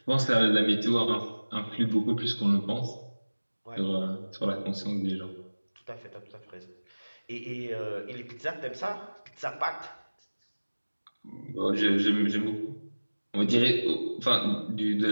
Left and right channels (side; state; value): both; inverted; correlation -1.00